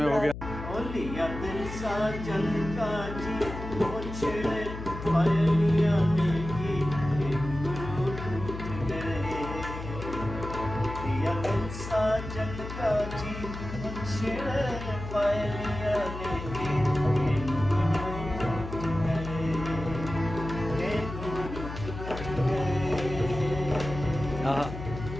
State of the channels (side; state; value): left; noise; hum, 9 dB below the sound